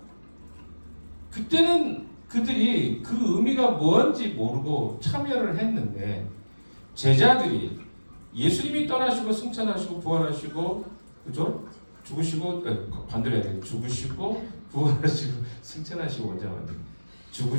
그때는 그들이 그 의미가 뭔지 모르고 참여를 했는데 제자들이 예수님이 떠나시고 승천하시고 부활하시고 그죠? 죽으시고 반대로 해야 돼요. 죽으시고 부활하시고 승천하시고 원장님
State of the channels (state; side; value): inverted; both; correlation -1.00